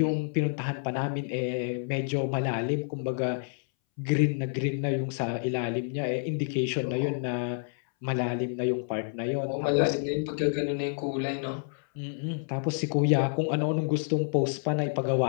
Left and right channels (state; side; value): silent; right; 59 dB below the other